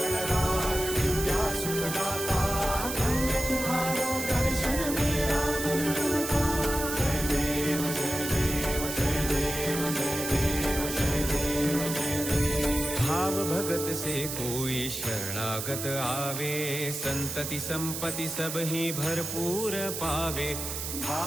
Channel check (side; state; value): right; noise; hiss, 5 dB below the sound